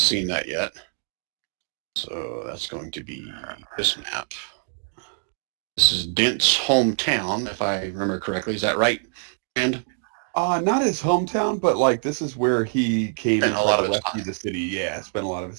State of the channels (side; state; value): left; silent; digital silence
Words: that yet. So that's going to be this map. This is Dent's hometown, if I remember correctly. Is that right? And not his hometown, but like this is where he came and a lot of rescue the city. Yeah, spent a lot of